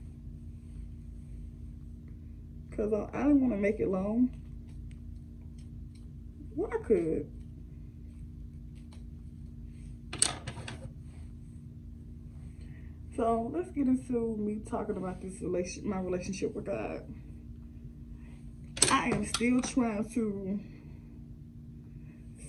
Because I didn't want to make it long. Well, I could. So let's get into me talking about this my relationship with God. I am still trying to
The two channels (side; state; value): both; identical; correlation 1.00